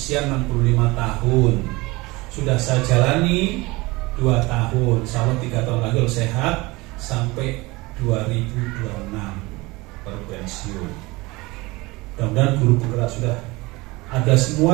65 tahun. Sudah saya jalani 2 tahun, insya Allah 3 tahun lagi sehat sampai 2026 baru pensiun. Mudah-mudahan guru penggerak sudah ada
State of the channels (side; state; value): left; quieter; 22.7 dB